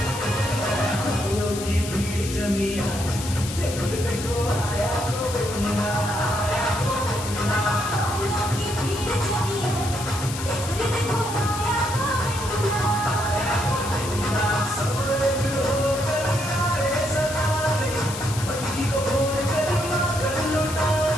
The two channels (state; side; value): noise; left; hiss, 9 dB below the sound